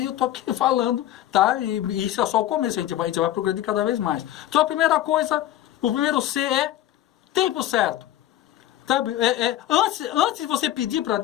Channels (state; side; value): quieter; right; 13.2 dB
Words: e eu estou aqui falando, tá? E isso é só o começo, a gente vai progredir cada vez mais. Então a primeira coisa, o primeiro C é tempo certo. Sabe? Antes de você pedir para